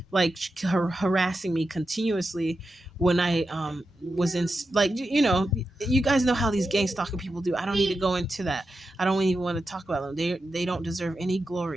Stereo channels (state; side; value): normal; both; correlation 0.89